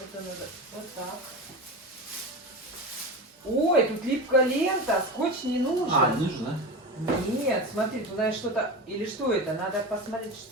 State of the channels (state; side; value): normal; both; correlation 0.25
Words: Это надо вот так. Ой, тут липкая лента. Скотч не нужен. Нужно. Нет, смотри, туда что-то... Или что это? Надо посмотреть,